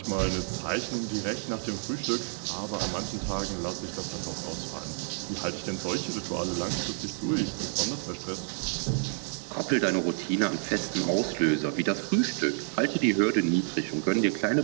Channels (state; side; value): silent; left; 58 dB below the other